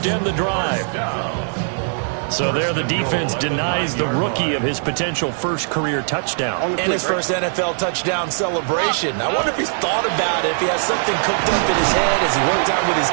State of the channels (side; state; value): left; silent; digital silence